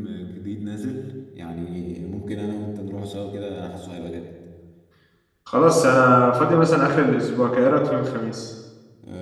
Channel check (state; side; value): identical; both; correlation 1.00